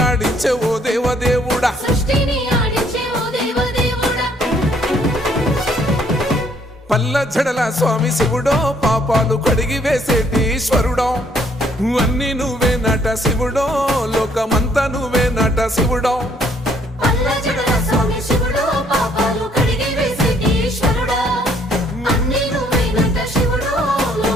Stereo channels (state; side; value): normal; both; correlation 0.65